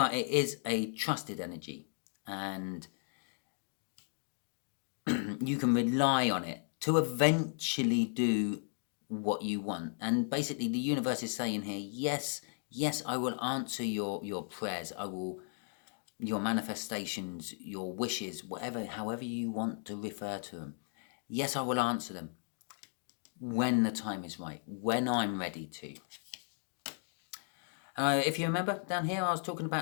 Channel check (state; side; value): silent; right; 54 dB below the other